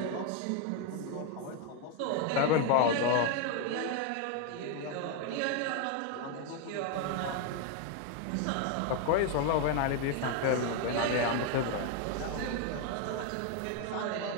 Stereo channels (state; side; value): different; both; correlation 0.01